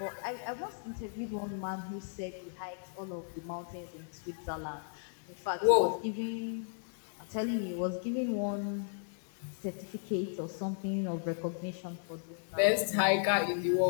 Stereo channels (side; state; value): right; silent; digital silence